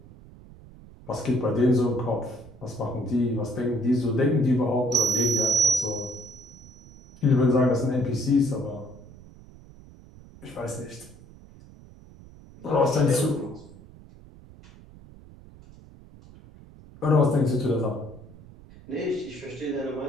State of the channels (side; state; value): right; noise; rumble, 21 dB below the sound